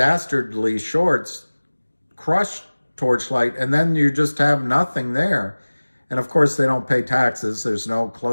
shorts crushed Torchlight, and then you just have nothing there. And of course, they don't pay taxes. There's no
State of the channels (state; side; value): inverted; both; correlation -1.00